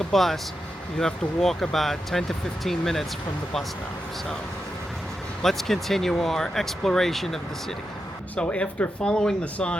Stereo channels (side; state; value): both; normal; correlation 0.88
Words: a bus. You have to walk about 10 to 15 minutes from the bus stop. So let's continue our exploration of the city. So after following the